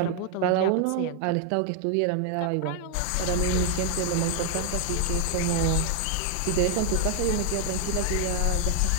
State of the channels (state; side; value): different; both; correlation 0.00